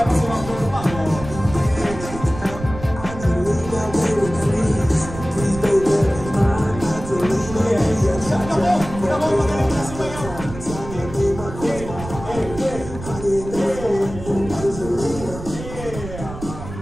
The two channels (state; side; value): noise; right; rumble, 11 dB below the sound